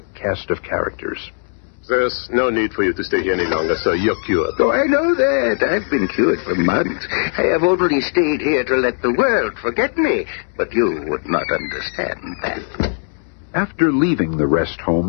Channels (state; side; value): silent; right; digital silence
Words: cast of characters. There's no need for you to stay here any longer, sir. You're cured. Oh, I know that. I've been cured for months. I have only stayed here to let the world forget me. But you would not understand that. After leaving the rest